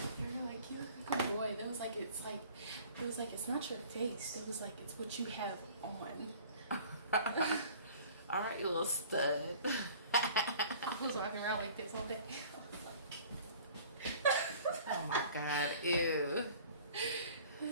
They were like, you look like a boy. It was like it's not your face. It was like it's what you have on. All right, you little stud. I was walking around like this all day. Oh my God, ew.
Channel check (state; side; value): inverted; both; correlation -0.48